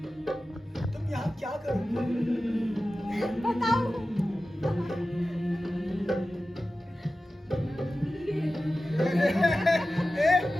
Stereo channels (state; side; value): normal; both; correlation 0.95